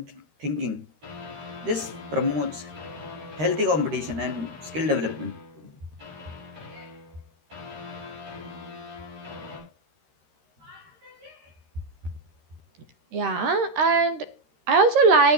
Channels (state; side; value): late; left; 13 ms